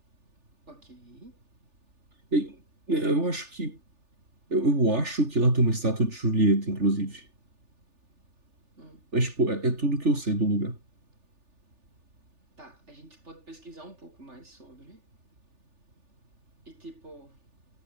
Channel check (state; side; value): late; left; 3.4 ms